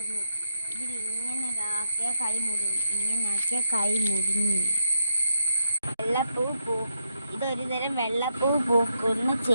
ഇതിൽ ഇങ്ങനെ ആക്കിയാൽ കൈ മുറിയും. ഇങ്ങനെ ആക്കിയാൽ കൈ മുറിഞ്ഞു. വെള്ളപ്പൂ ഇതൊരു തരം വെള്ളപ്പൂ പൂക്കുന്ന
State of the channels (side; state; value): both; inverted; correlation -0.80